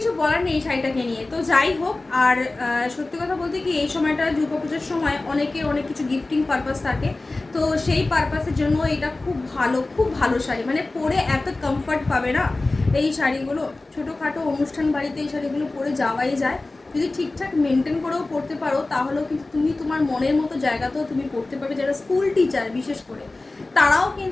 বলার নেই এই শাড়িটাকে নিয়ে। তো যাই হোক, আর সত্যি কথা বলতে কি, এই সময়টা দুর্গাপুজোর সময় অনেকে অনেক কিছু গিফটিং পারপাস থাকে, তো সেই পারপাসের জন্য এটা খুব ভালো শাড়ি। পরে এত কমফর্ট পাবে না এই শাড়িগুলো। ছোটোখাটো অনুষ্ঠান বাড়িতে এই শাড়িগুলো পরে যাওয়াই যায়। যদি ঠিকঠাক মেনটেন করেও পড়তে পারো তাহলেও কিন্তু তুমি তোমার মনের মতো জায়গাতেও তুমি পড়তে পারবে। যারা স্কুল টিচার বিশেষ করে, তারাও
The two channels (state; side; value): quieter; right; 3.1 dB